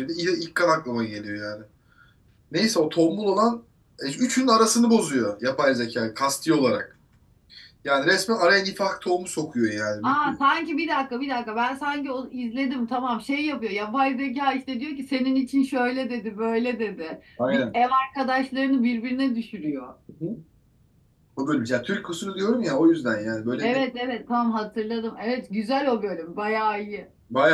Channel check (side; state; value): both; identical; correlation 1.00